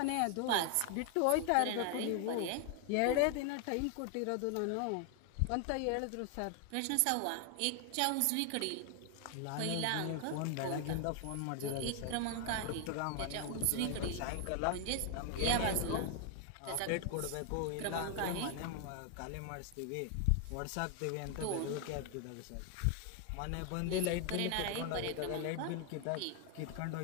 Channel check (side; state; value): both; different; correlation 0.00